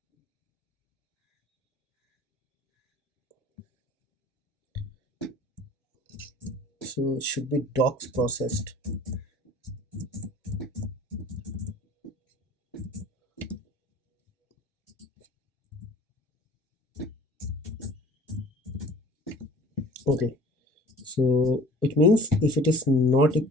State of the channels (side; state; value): both; normal; correlation 0.47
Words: So it should be docs processed. Okay, so it means if it is not